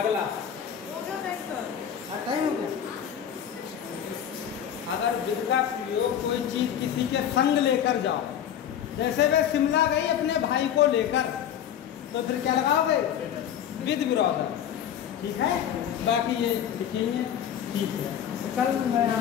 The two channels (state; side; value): quieter; right; 9.6 dB